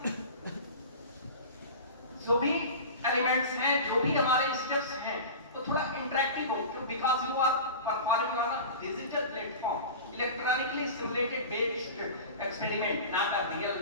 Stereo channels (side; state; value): both; inverted; correlation -0.33